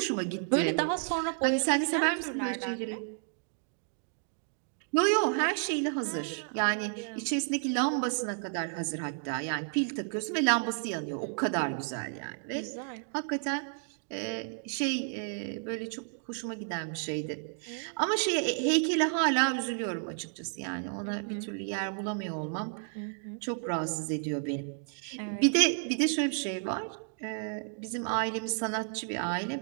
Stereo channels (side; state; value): left; silent; 57 dB below the other